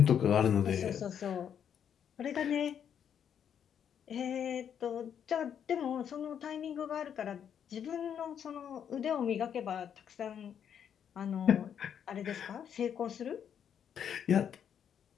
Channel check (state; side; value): quieter; right; 8.5 dB